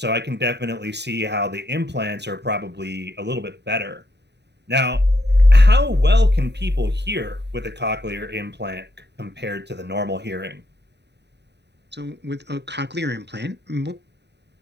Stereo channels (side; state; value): left; late; 0.50 ms